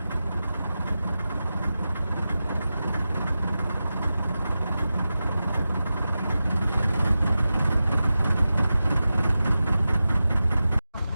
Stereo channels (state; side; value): inverted; both; correlation -0.93